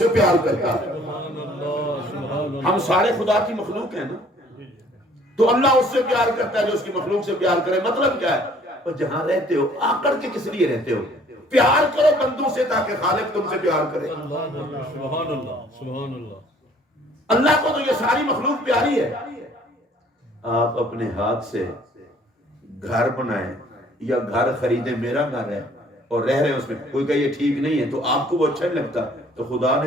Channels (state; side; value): normal; both; correlation 0.57